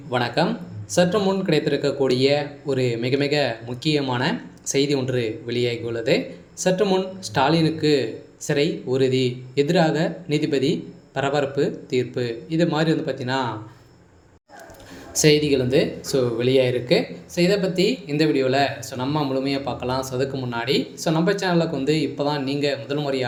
வணக்கம். சற்று முன் கிடைத்திருக்கக்கூடிய ஒரு மிக மிக முக்கியமான செய்தி ஒன்று வெளியாகியுள்ளது. சற்று முன் ஸ்டாலினுக்கு சிறை உறுதி, எதிராக நீதிபதி பரபரப்பு தீர்ப்பு, இது மாதிரி பார்த்தீங்கன்னா செய்திகள் வெளியாகிருக்கு. இதை பற்றி இந்த வீடியோவில் நம்ம முழுமையாக பார்க்கலாம். அதுக்கு முன்னாடி நம்ம சேனலுக்கு இப்போ தான் நீங்கள் முதல்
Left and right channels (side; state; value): both; identical; correlation 1.00